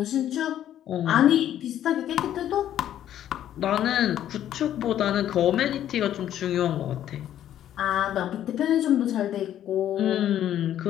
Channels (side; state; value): right; quieter; 11.3 dB